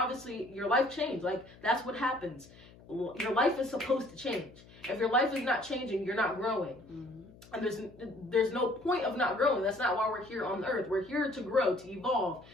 your life changed. Like, that's what happens. Your life is supposed to change. If your life is not changing, you're not growing. And there's no point of not growing. That's not why we're here on the earth. We're here to grow, to evolve.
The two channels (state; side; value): noise; left; hum, 22 dB below the sound